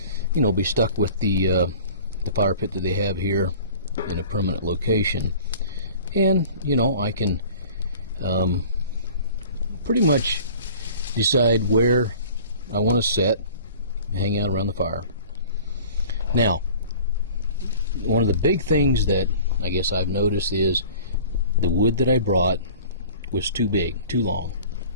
you know, be stuck with the fire pit that they have here in a permanent location. And, you know, I can pretty much decide where I want to sit, hang out around the fire. Now, one of the big things that I guess I've noticed is the wood that I brought was too big, too long,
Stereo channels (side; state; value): both; inverted; correlation -0.45